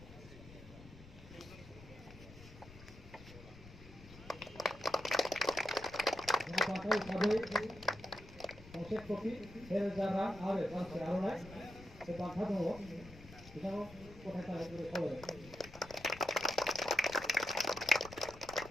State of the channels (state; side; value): noise; left; rumble, 18 dB below the sound